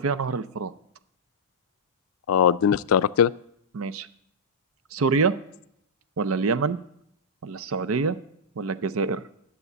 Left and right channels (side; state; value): both; normal; correlation -0.11